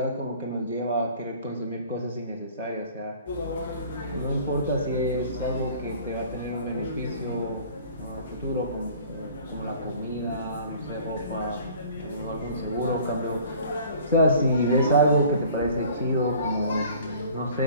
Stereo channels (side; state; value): both; inverted; correlation -0.49